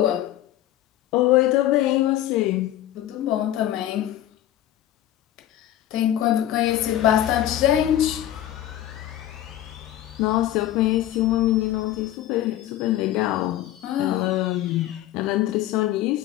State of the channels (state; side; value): quieter; right; 13.1 dB